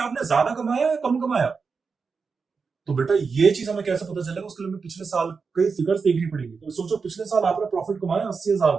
आपने ज्यादा कमाया या कम कमाया? तो बेटा ये चीज हमें कैसे पता चलेगा? उसके लिए हमें पिछले साल के फिगर्स देखनी पड़ेगी। तो सोचो पिछले साल आपने प्रॉफिट कमाया 80,000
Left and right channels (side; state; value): left; quieter; 5.1 dB